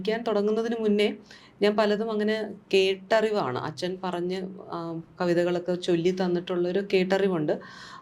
തുടങ്ങുന്നതിന് മുന്നേ ഞാൻ പലതും അങ്ങനെ കേട്ടറിവാണ്. അച്ഛൻ പറഞ്ഞ് കവിതകളൊക്കെ ചൊല്ലി തന്നിട്ടുള്ളൊരു കേട്ടറിവുണ്ട്.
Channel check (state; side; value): identical; both; correlation 1.00